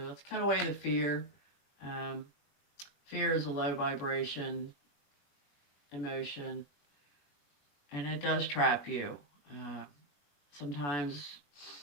cut away the fear. Fear is a low vibration emotion, and it does trap you. Sometimes,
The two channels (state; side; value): late; right; 21 ms